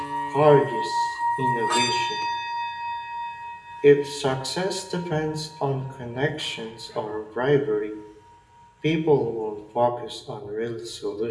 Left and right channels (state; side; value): identical; both; correlation 1.00